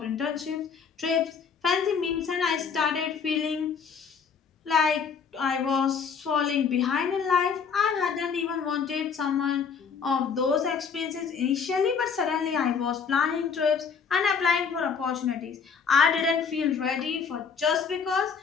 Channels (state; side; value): quieter; right; 6.1 dB